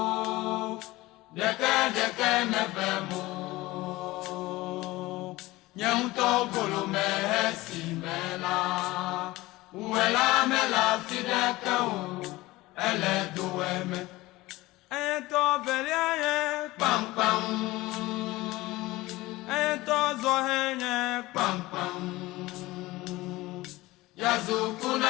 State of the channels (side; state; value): right; quieter; 19.4 dB